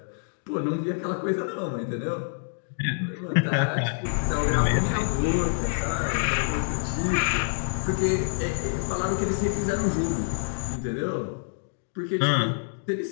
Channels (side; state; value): right; silent; digital silence